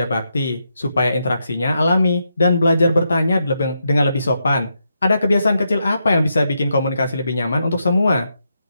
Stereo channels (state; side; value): inverted; both; correlation -0.82